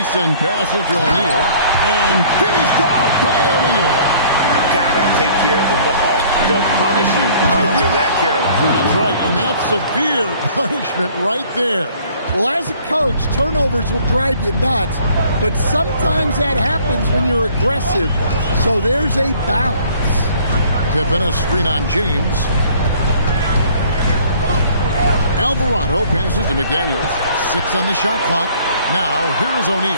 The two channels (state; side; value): inverted; both; correlation -0.55